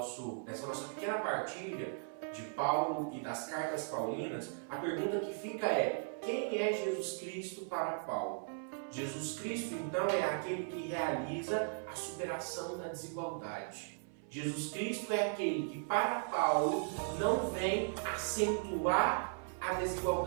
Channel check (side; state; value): left; silent; 53 dB below the other